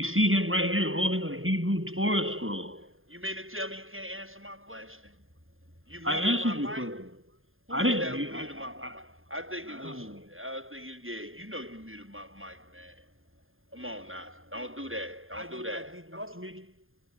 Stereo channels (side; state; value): left; late; 0.60 ms